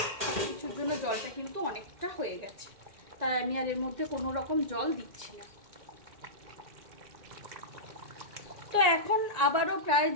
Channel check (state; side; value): late; left; 1.8 ms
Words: সব কিছুর জন্য জলটা কিন্তু অনেকটা হয়ে গেছে, তাই আমি আর এর মধ্যে কোনো রকম জল দিচ্ছি না। তো এখন আবারও প্রায়